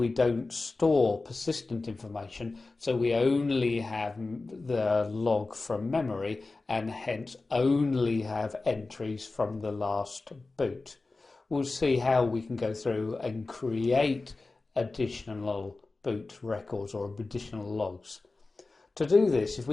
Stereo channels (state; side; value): quieter; right; 3.5 dB